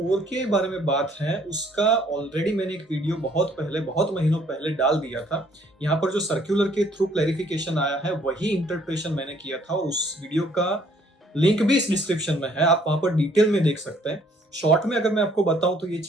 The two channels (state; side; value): normal; both; correlation 0.62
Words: के बारे में बात है उसका ऑलरेडी मैंने एक वीडियो बहुत महीनों पहले डाल दिया था। यहाँ पर जो सर्कुलर के थ्रू क्लैरिफिकेशन आया है वही इंटरप्रिटेशन मैंने किया था, और उस वीडियो का लिंक भी इस डिस्क्रिप्शन में है, आप वहां पर डिटेल में देख सकते हैं। शॉर्ट में अगर मैं आपको बताऊं तो ये